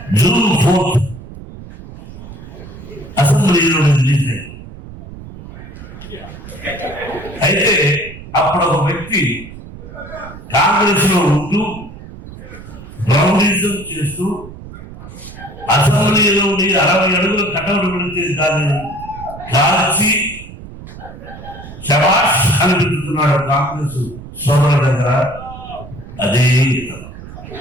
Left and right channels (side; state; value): right; noise; rumble, 15 dB below the sound